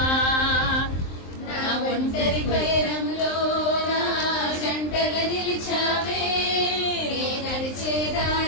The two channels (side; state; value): right; late; 23 ms